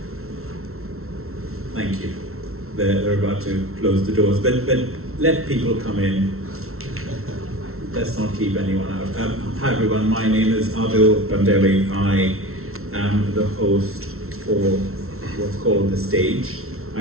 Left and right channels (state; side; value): late; left; 0.62 ms